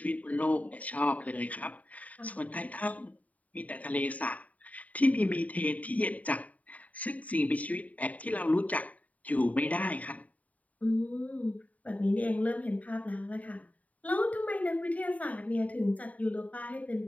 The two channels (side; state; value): right; late; 0.071 ms